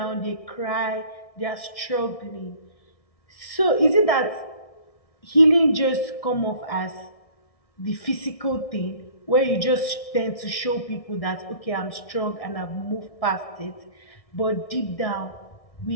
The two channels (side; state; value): right; late; 1.6 ms